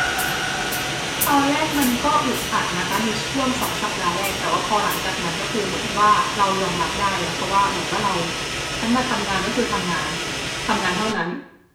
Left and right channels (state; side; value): identical; both; correlation 1.00